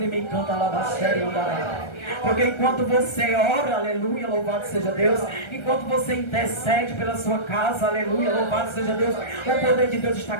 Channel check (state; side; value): late; right; 1.3 ms